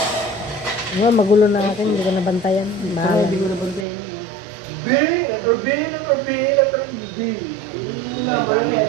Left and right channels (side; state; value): left; drops out; at 3.9 s